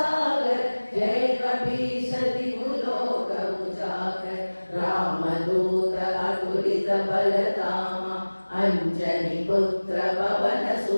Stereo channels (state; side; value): inverted; both; correlation -1.00